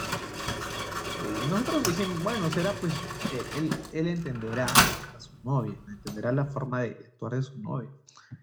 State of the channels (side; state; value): both; identical; correlation 1.00